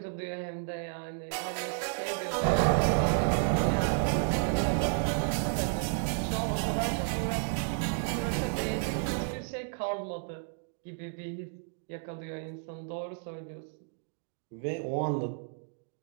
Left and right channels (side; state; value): left; silent; 57 dB below the other